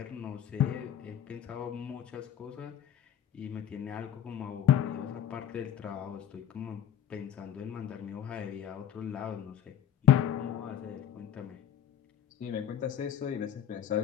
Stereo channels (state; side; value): quieter; right; 10.0 dB